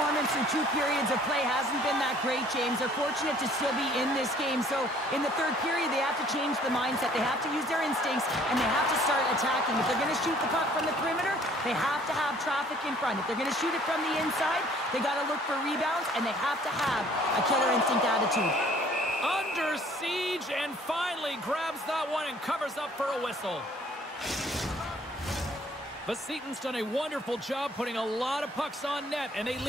through 2 periods of play hasn't been that great, James. They're fortunate to still be in this game. So in the third period, they have to change the mindset. They have to use their instincts, and they have to start attacking. If they're going to shoot the puck from the perimeter, they have to have traffic in front. If they're going to shoot it from the inside, they got to look for rebounds, and they have to have a killer instinct attitude. Under siege, and finally grabs that one and covers up for a whistle. Vsetín's done a wonderful job putting a lot of pucks on net, and they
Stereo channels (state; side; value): normal; both; correlation 0.57